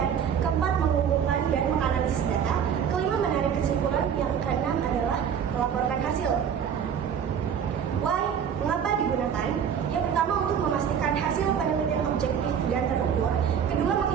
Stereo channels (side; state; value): left; quieter; 8.0 dB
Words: keempat mengumpulkan dan menganalisis data, kelima menarik kesimpulan, yang keenam adalah melaporkan hasil. Why? Mengapa digunakan? Yang pertama untuk memastikan hasil penelitian objektif dan terukur, kedua